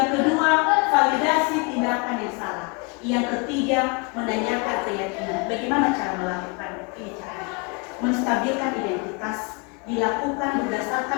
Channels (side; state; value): right; quieter; 31.2 dB